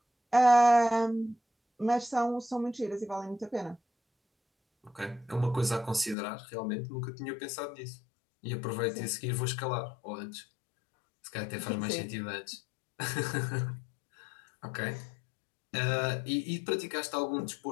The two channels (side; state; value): right; drops out; at 6.2 s